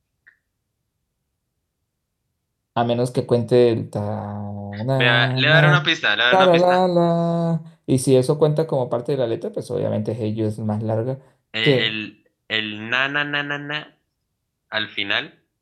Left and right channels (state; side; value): identical; both; correlation 1.00